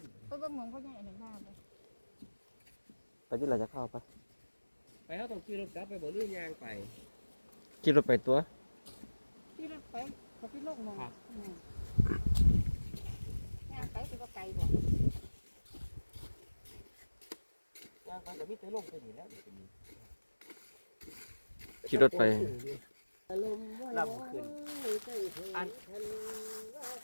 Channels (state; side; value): inverted; both; correlation -1.00